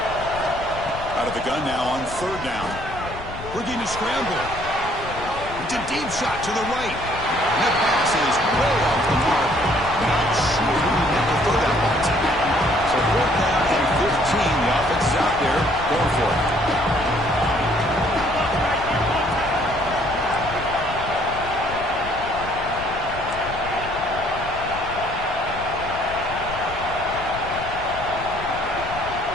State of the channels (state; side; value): noise; left; rumble, 12 dB below the sound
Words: Out of the gun now on 3rd down. Looking to scramble. It's a deep shot to the right. And that pass is way off the mark. Not sure who he meant to throw that ball to. So 4th down and 15. The offense is out there going for it.